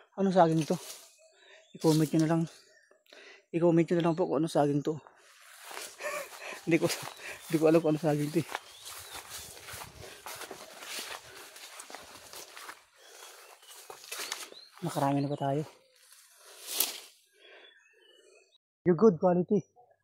anong saging to. I-comment nyo na lang. I-comment nyo na lang po kung anong saging to. hindi ko alam kung anong saging to eh. Nakarami na ba tayo? Yung good quality.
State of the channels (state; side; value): identical; both; correlation 1.00